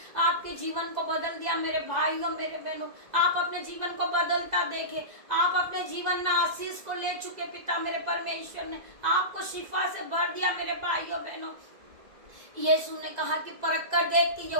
आपके जीवन को बदल दिया मेरे भाइयों मेरे बहनों। आप अपने जीवन को बदलता देखे, आप अपने जीवन में आशीष को ले चुके पिता मेरे परमेश्वर ने आपको शिफा से भर दिया मेरे भाइयों बहनों। यीशु ने कहा कि परख कर देख कि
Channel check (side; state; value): left; late; 2.0 ms